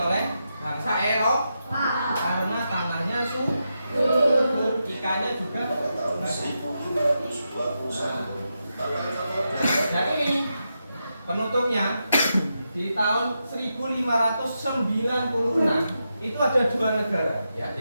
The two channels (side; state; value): both; inverted; correlation -0.86